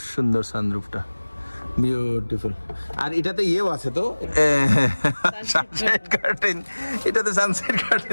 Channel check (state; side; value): inverted; both; correlation -1.00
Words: সুন্দর সানরুফটা, বিউটিফুল। আর এটাতে ইয়েও আছে তো, সানসেট কার্টেন, এটাতে সানসেট